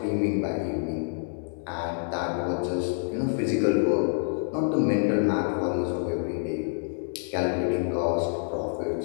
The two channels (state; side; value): silent; right; digital silence